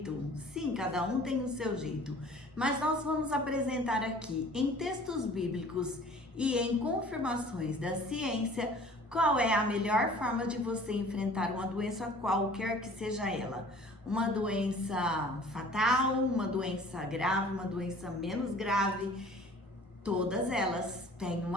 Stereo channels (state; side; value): normal; both; correlation 0.49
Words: Sim, cada um tem o seu jeito. Mas nós vamos apresentar aqui em textos bíblicos e em confirmações da ciência qual é a melhor forma de você enfrentar uma doença qualquer que seja ela. Uma doença fatal, uma doença grave, uma doença menos grave. Todas elas têm